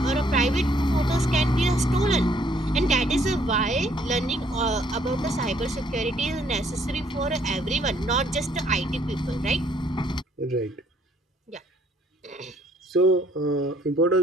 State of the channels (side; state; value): both; normal; correlation 0.65